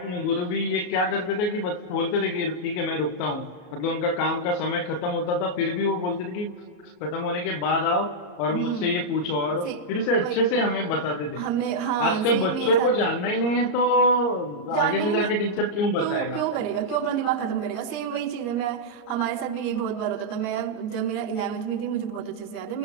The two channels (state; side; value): late; right; 34 ms